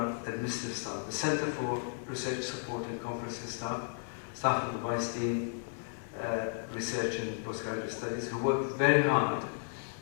administrative staff, the Center for Research Support and Conferences staff of the Vice Dean, Research and Postgraduate Studies, who worked very hard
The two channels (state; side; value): silent; right; 55 dB below the other